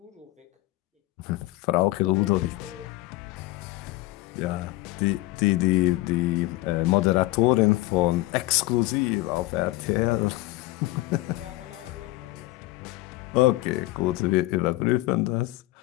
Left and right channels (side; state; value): right; quieter; 19.2 dB